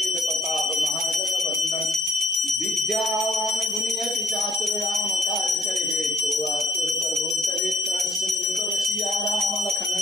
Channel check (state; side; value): normal; both; correlation 0.64